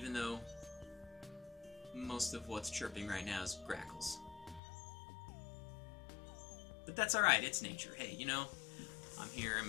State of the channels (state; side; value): drops out; right; at 4.6 s